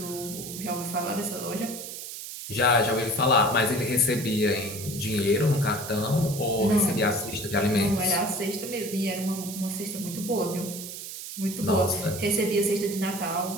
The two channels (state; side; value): noise; right; hiss, 9 dB below the sound